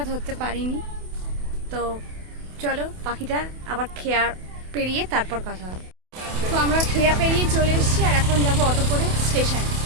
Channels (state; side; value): late; left; 28 ms